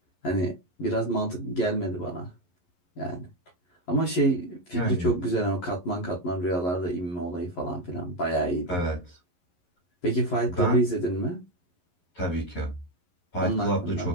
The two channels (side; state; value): right; late; 11 ms